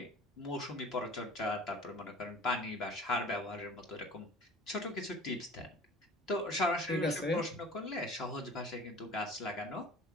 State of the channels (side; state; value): both; normal; correlation 0.44